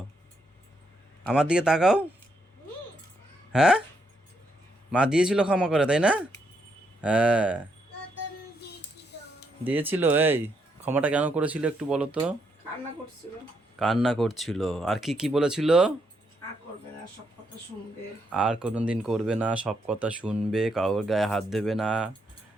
আমার দিকে তাকাও। হ্যাঁ, মা দিয়েছিল ক্ষমা করে, তাই না? হ্যাঁ, দিয়েছিল। এই ক্ষমাটা কেন করেছিল একটু বলো তো? কান্না করছিল। কান্না করছিল। আর কি কি বলেছিল? আর করবে না, সব কথা শুনবে। আর কোনোদিন করবে না, সব কথা শুনবে, কারোর গায়ে হাত দেবে না,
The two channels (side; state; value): both; normal; correlation 0.77